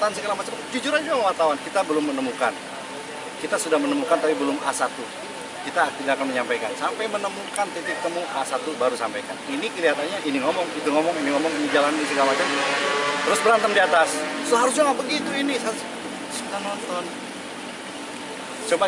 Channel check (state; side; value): identical; both; correlation 1.00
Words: segala macam, jujur aja wartawan, kita belum menemukan. Kita sudah menemukan tapi belum A1. Kita tidak akan menyampaikan. Sampai menemukan titik temu A1 baru sampaikan. Ini kelihatannya ini ngomong, itu ngomong, ini jalan, ini segala macam. Terus berantem di atas. Seharusnya nggak begitu ini. Sudah nonton. Coba